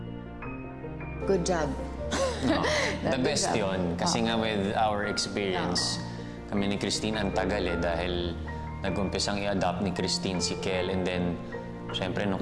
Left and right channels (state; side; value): identical; both; correlation 1.00